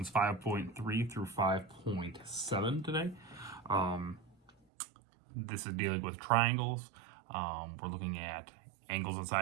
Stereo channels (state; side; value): drops out; left; at 4.5 s